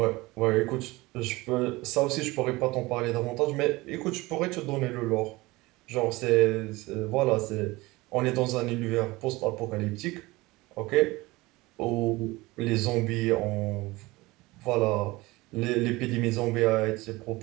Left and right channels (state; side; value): quieter; left; 21.2 dB